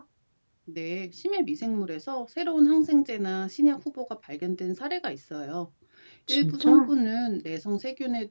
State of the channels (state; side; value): inverted; both; correlation -1.00